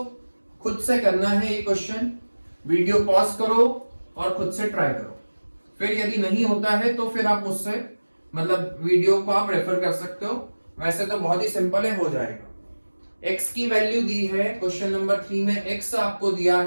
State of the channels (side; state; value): both; inverted; correlation -1.00